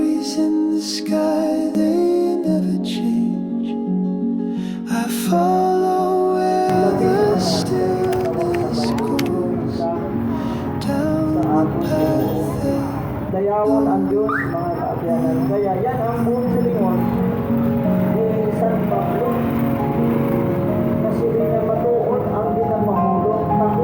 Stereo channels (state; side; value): identical; both; correlation 1.00